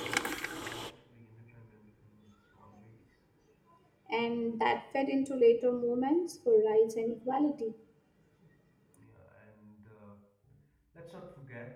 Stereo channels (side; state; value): both; identical; correlation 1.00